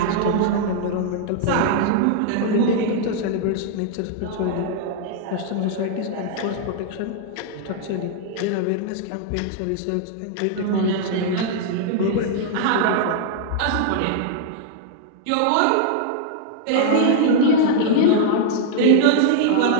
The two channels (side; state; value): both; different; correlation -0.01